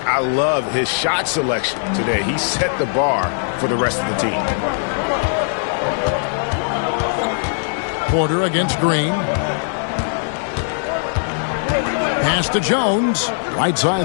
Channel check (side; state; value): right; silent; digital silence